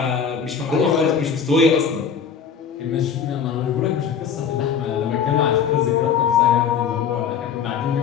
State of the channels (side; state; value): right; quieter; 7.1 dB